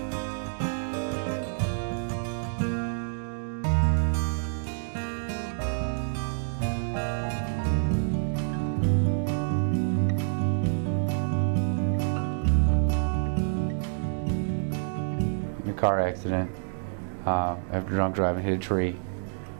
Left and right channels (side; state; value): left; silent; digital silence